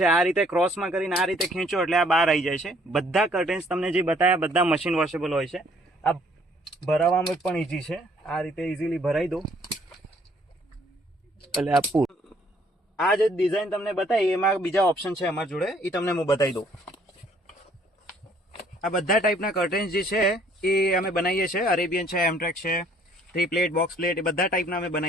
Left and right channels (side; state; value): both; normal; correlation 0.62